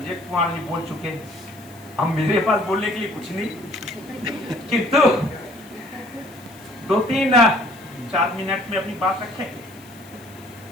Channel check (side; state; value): left; noise; hiss, 24 dB below the sound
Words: कुमार जी बोल चुके। अब मेरे पास बोलने के लिए कुछ नहीं, किंतु 2-3-4 मिनट में अपनी बात रखेंगे।